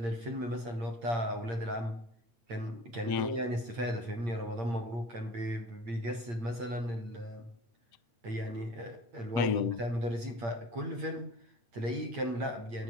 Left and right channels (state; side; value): late; left; 8.7 ms